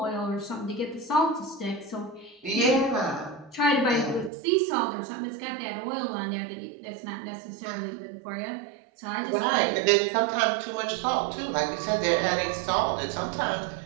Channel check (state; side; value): drops out; left; at 4.3 s